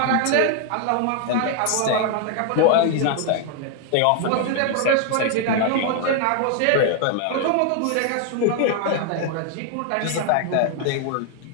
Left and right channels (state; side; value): different; both; correlation 0.00